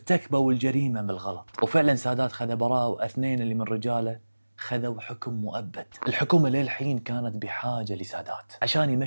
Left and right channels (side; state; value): both; inverted; correlation -1.00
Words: الجريمة بالغلط. وفعلا سادات خذ براءة، واثنين اللي من رجاله خذوا حكم مؤبد. الحكومة للحين كانت بحاجة لسادات عشان